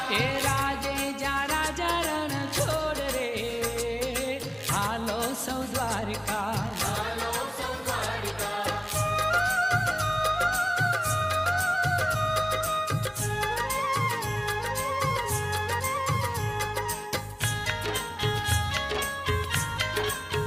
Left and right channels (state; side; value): identical; both; correlation 1.00